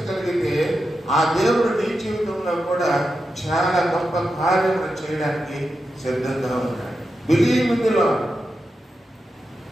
ఆ దేవుడు నీ జీవితంలో కూడా చాలా గొప్ప కార్యములు చేయడానికి సిద్ధంగా ఉన్నాడు. Believe in the lord.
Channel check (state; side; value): normal; both; correlation 0.89